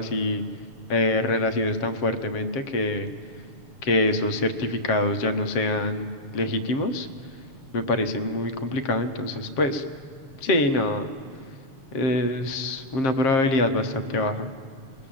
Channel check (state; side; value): late; right; 7.5 ms